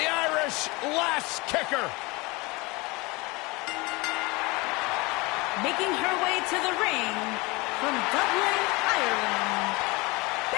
Irish last kicker. Making her way to the ring from Dublin, Ireland,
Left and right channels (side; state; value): right; quieter; 24.7 dB